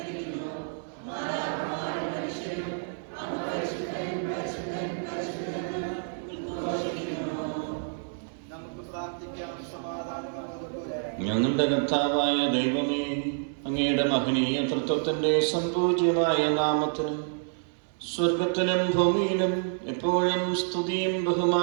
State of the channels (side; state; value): left; silent; digital silence